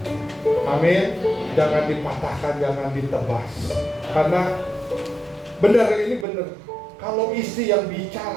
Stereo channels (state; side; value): drops out; left; at 6.2 s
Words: Amin. Jangan dipatahkan, jangan ditebas. Karena benar, ini benar. Kalau istri yang